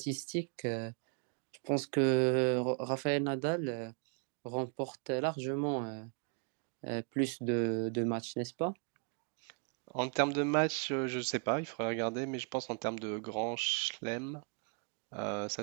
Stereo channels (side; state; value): left; quieter; 39.3 dB